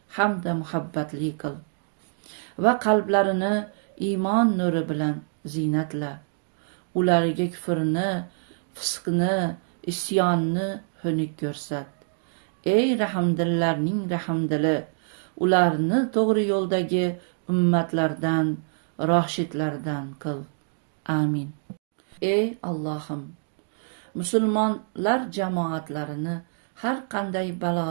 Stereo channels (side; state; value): left; silent; digital silence